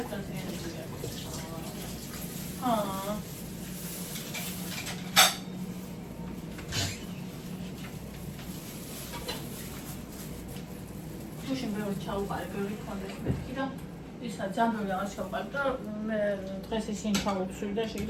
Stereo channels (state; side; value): identical; both; correlation 1.00